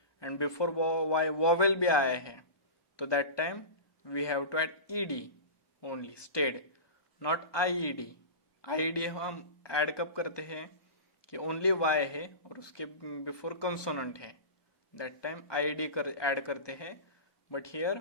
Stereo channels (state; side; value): late; right; 1.2 ms